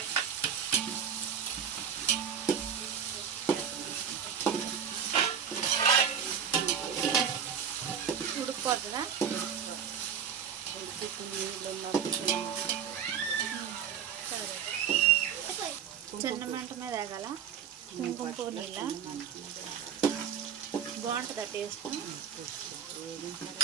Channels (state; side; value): quieter; left; 7.9 dB